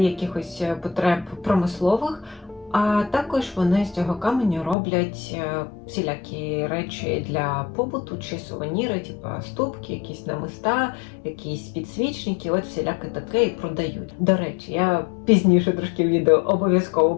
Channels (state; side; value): drops out; right; at 4.8 s